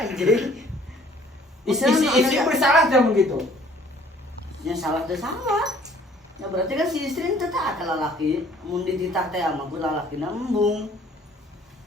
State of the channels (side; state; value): both; normal; correlation 0.56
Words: Isi bersalah jam begitu. Ya salah teh salah. Ya berarti kan si istri teh teh ka lalaki mun dititah teh ama ku lalakina embung.